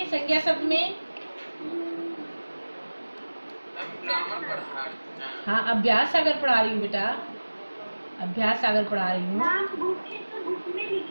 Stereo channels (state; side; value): inverted; both; correlation -1.00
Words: संज्ञा शब्द में। हाँ, अभ्यास सागर पढ़ा रही हूँ बेटा, अभ्यास सागर पढ़ा रही हूँ। हाँ, बुक